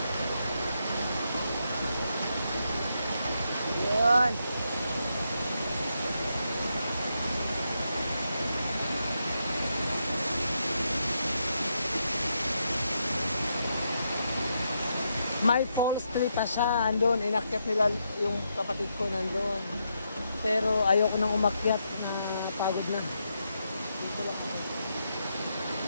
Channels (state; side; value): inverted; both; correlation -0.81